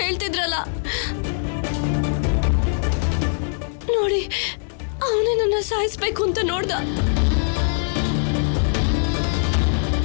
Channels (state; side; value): silent; right; digital silence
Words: ಹೇಳ್ತಿದ್ರಲ್ಲ. ನೋಡಿ, ಅವನೇ ನನ್ನ ಸಾಯಿಸ್ಬೇಕು ಅಂತ ನೋಡ್ದ.